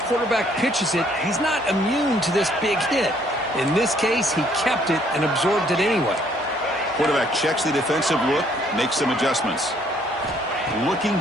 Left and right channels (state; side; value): normal; both; correlation 0.64